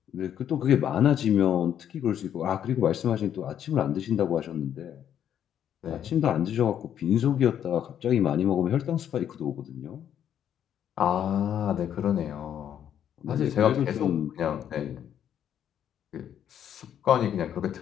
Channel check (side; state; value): right; quieter; 9.7 dB